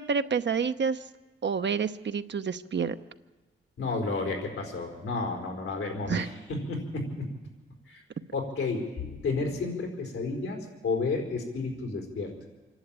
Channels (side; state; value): both; normal; correlation 0.29